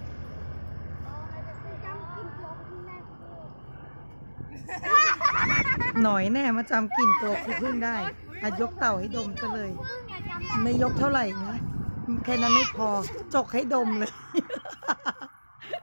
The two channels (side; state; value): both; inverted; correlation -1.00